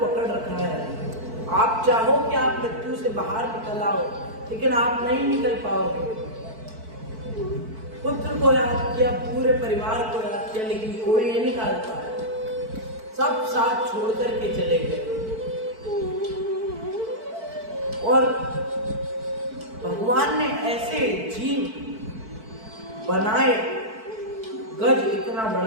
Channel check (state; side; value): late; left; 4.5 ms